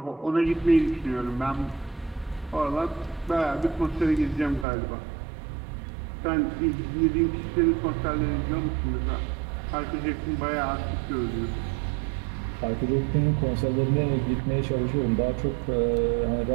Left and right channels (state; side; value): drops out; left; at 4.7 s